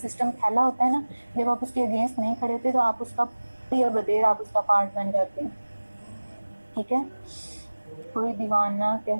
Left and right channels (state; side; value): inverted; both; correlation -1.00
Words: سسٹم پھیلا ہوتا ہے نا، جب آپ اس کے اگینسٹ نہیں کھڑے ہوتے تو آپ اس کا بدیر آپ اس کا پارٹ بن جاتے ہیں۔ ٹھیک ہے، کوئی دیوانہ